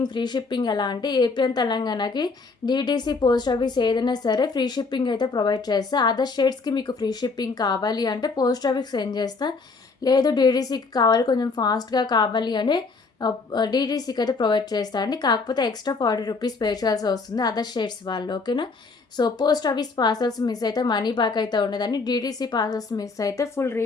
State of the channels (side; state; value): right; quieter; 4.2 dB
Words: ఫ్రీ షిప్పింగ్ ఎలా అంటే ఏపీ అండ్ తెలంగాణకి డీటీసీ పోస్ట్ ఆఫీస్ ఏదైనా సరే ఫ్రీ షిప్పింగ్ అయితే ప్రొవైడ్ చేస్తా. అదర్ స్టేట్స్కి మీకు ఫ్రీ షిప్పింగ్ కావాలి అంటే పోస్ట్ ఆఫీస్ సెండ్ చేస్తా. లేదు డీటీసీకి కావాలి, కొంచెం ఫాస్ట్గా కావాలి అని డీటీసీకి అయితే ప్రొవైడ్ చేస్తా అండి. కాకపోతే ఎక్స్ట్రా 40 రూపీస్ పే చేయాల్సి వస్తుంది అదర్ స్టేట్స్ వాళ్ళు, ఓకేనా. So post office parcels miss అయితే మనీ బ్యాక్ అయితే ఉండదండి. డీటీసీ పార్సల్స్ మిస్ అయితే ఫుల్